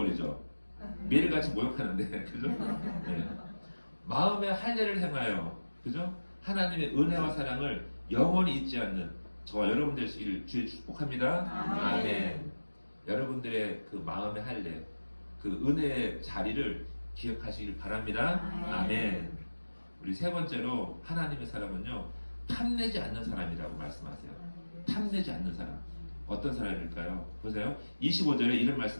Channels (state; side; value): inverted; both; correlation -1.00